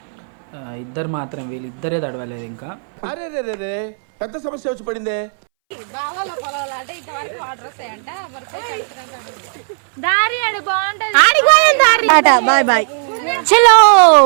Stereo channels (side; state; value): left; silent; 66 dB below the other